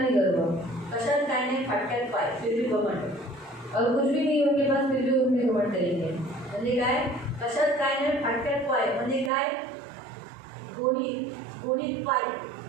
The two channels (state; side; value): drops out; left; at 9.3 s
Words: गर्व, कशात काय नाही फाटक्यात पाय फिर भी घमंड, और कुछ भी नहीं उनके पास फिर भी उनके घमंड करेंगे। म्हणजे काय कशात काय नाही फाटक्यात पाय म्हणजे काय गोणीत पाय